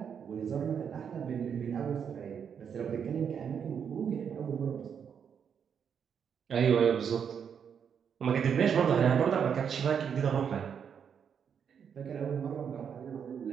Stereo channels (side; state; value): left; quieter; 7.5 dB